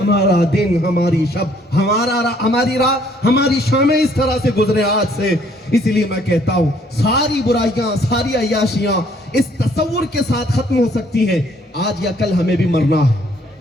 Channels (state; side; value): normal; both; correlation 0.63